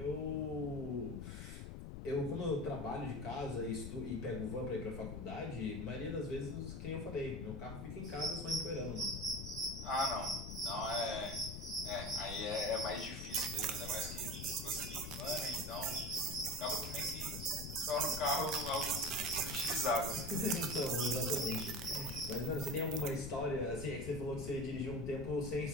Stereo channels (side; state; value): left; noise; rumble, 7 dB below the sound